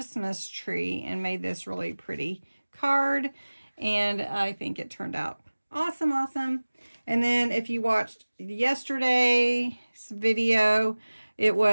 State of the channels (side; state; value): both; inverted; correlation -1.00